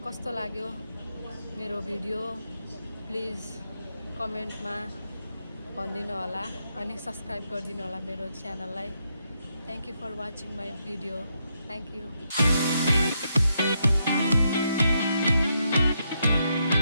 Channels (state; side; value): inverted; both; correlation -0.80